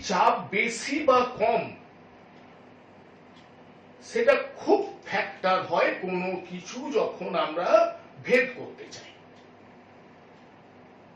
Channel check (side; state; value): both; identical; correlation 1.00